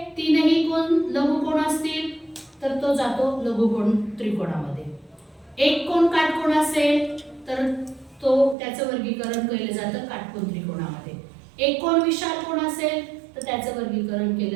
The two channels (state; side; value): drops out; left; at 8.6 s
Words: 3ही कोण लघुकोण असतील तर तो जातो लघुकोण त्रिकोणामध्ये, एक कोण काटकोण असेल तर त्याचं वर्गीकरण केलं जातं काटकोन त्रिकोणामध्ये, एक कोण विशालकोण असेल तर त्याचं वर्गीकरण